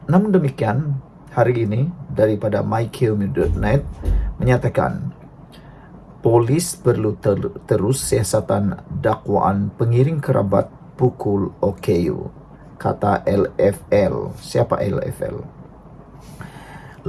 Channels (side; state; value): both; identical; correlation 1.00